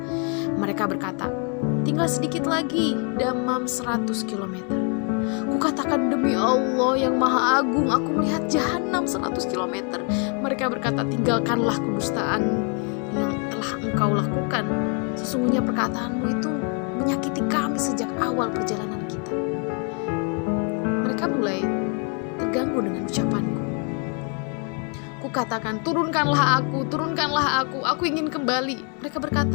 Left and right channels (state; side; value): quieter; right; 37.9 dB